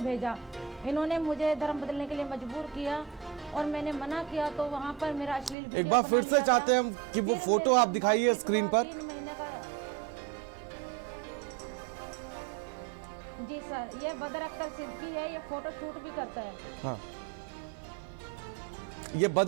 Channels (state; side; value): drops out; left; at 5.6 s